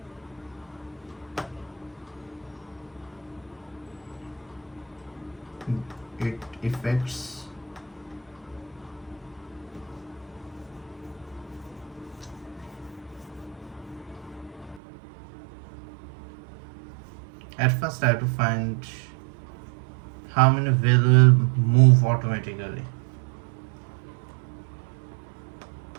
It affects at first I have to find how many values will move automatically.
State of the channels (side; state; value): left; drops out; at 14.8 s